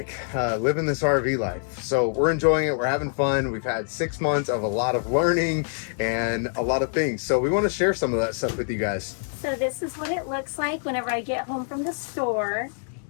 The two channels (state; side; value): silent; right; 62 dB below the other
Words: living this RV life. So we're enjoying it, we're having fun. We've had 6 months of a lot of learning and a lot of things. So we want to share some of that stuff with you guys. So this is what it looks like whenever I get home from the store.